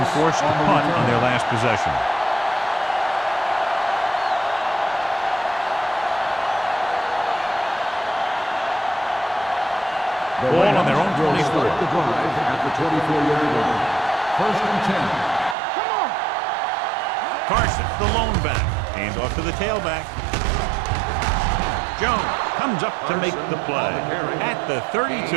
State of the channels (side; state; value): left; drops out; at 15.6 s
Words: forced to punt on their last possession. Ball on their own 24. Start the drive at the 24-yard line. First and 10. Carson, the lone back. Hands off to the tailback. Jones comes up to make the play at the